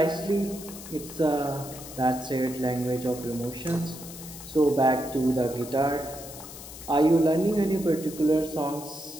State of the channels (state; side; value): noise; left; hiss, 14 dB below the sound